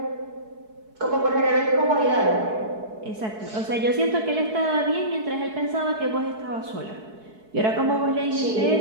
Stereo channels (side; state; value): left; late; 4.7 ms